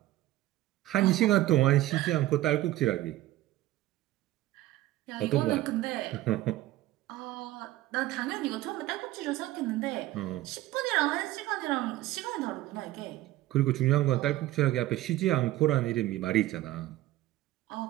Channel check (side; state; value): left; quieter; 15.8 dB